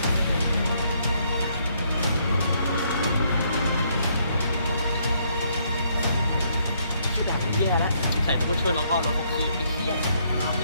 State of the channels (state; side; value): inverted; both; correlation -0.70